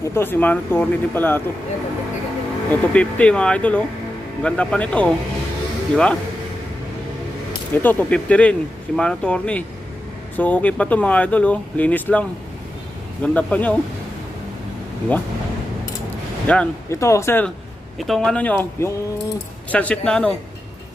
Ito, si Mano Torni din pala ito. Yan, 150 Ito 50 mga idol oh. Ang ganda pa nito oh. Di ba? Ito 250 rin, si Mano Torni. So okay pa to mga idol oh. Linis lang. Ganda pa niya oh. Di ba? Yan, ito sir. Itong ano nyo, yung sunset na ano,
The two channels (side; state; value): both; normal; correlation 0.90